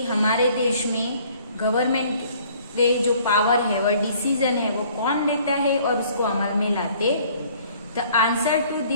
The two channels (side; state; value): both; inverted; correlation -0.57